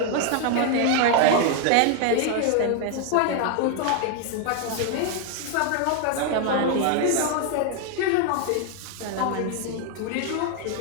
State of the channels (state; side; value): different; both; correlation 0.01